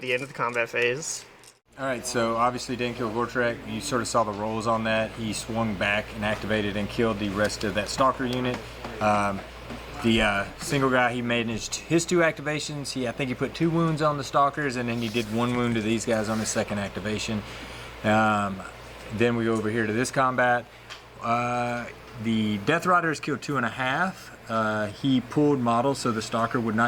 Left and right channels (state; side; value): identical; both; correlation 1.00